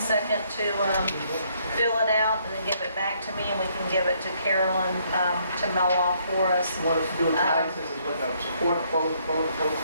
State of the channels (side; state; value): both; inverted; correlation -0.69